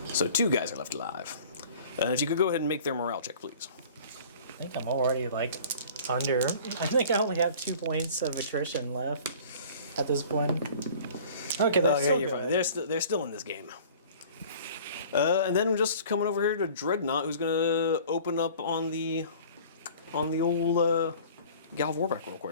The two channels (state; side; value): inverted; both; correlation -0.47